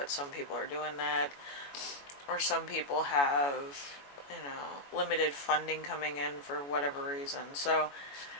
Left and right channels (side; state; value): right; late; 21 ms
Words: some people are doing that, or some people have limited funding coming in for whatever reason. So